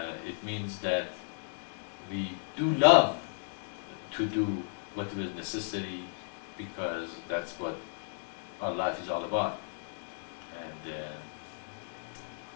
it means that we do love to do what was necessary, because that's what our life is all about. And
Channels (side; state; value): right; silent; digital silence